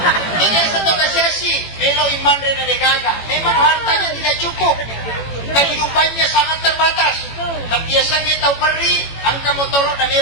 Yang tahu kasiasi, melo iman rena degaga. Memang hartanya tidak cukup, kehidupannya sangat terbatas. Tapi biasanya tahu peri, angka motorok dan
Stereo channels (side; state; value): right; late; 18 ms